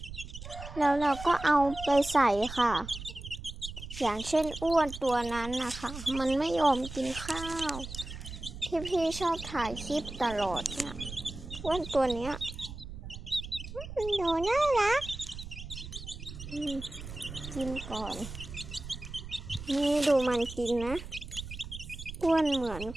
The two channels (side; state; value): right; noise; rumble, 11 dB below the sound